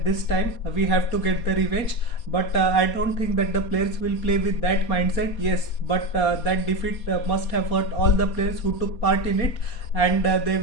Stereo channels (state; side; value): late; right; 4.2 ms